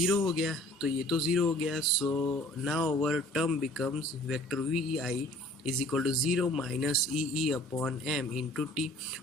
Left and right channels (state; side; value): normal; both; correlation 0.52